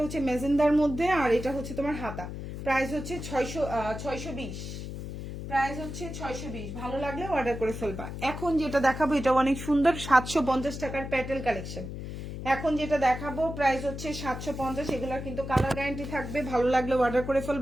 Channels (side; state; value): left; noise; hum, 8 dB below the sound